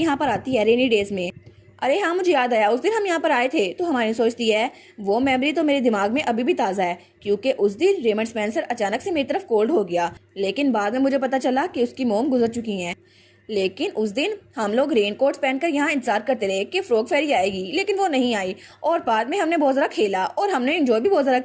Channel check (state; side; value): identical; both; correlation 1.00